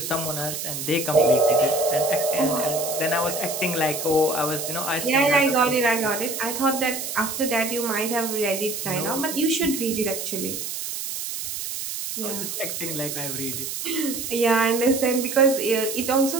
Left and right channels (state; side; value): noise; right; hiss, 5 dB below the sound